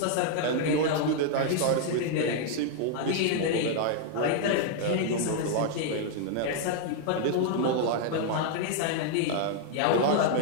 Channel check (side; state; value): both; different; correlation 0.00